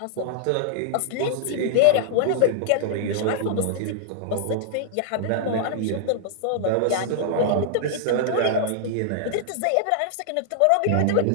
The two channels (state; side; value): different; both; correlation -0.01